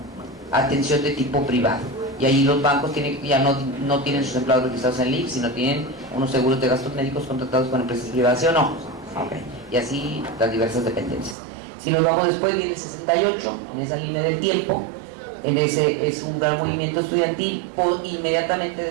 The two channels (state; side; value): drops out; left; at 11.4 s